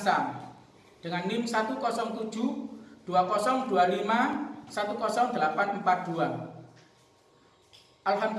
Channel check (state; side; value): identical; both; correlation 1.00